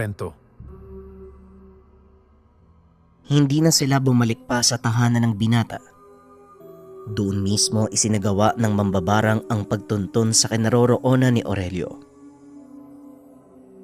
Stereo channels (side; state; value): both; identical; correlation 1.00